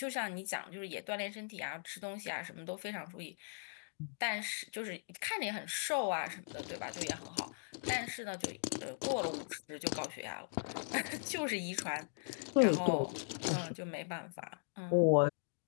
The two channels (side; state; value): right; silent; digital silence